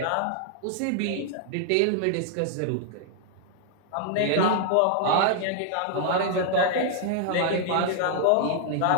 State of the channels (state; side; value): different; both; correlation 0.00